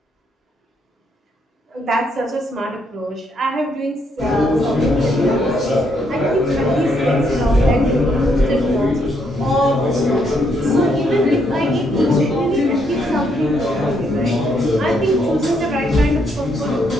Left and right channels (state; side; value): normal; both; correlation 0.74